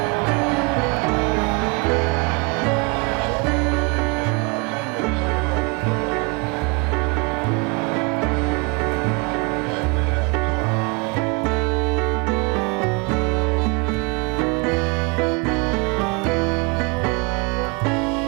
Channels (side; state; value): left; quieter; 29.8 dB